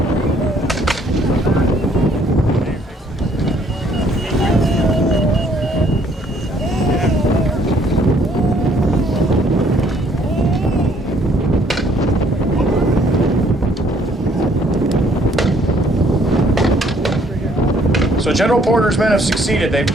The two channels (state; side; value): normal; both; correlation 0.64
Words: So General Porter's men have succeeded. They've